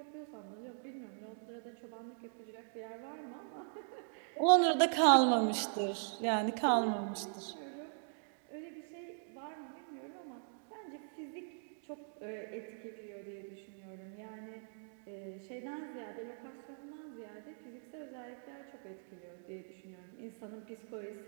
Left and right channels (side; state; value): left; silent; digital silence